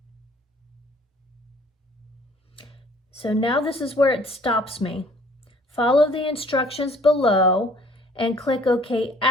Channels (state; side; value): normal; both; correlation 0.56